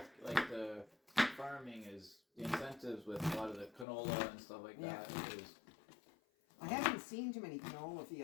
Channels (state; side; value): drops out; right; at 3.9 s